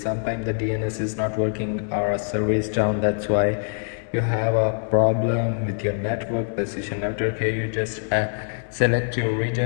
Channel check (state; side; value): silent; right; digital silence